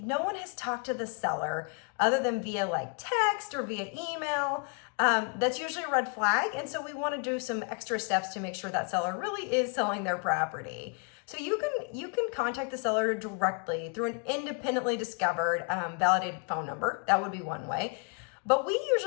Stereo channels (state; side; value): quieter; right; 36.1 dB